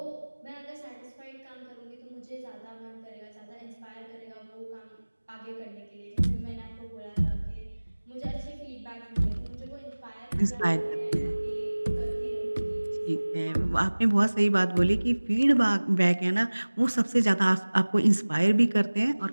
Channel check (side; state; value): both; inverted; correlation -1.00